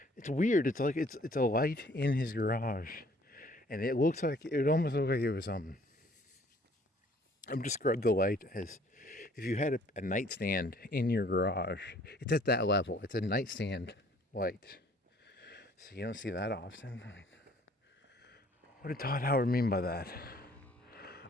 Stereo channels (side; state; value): both; normal; correlation 0.58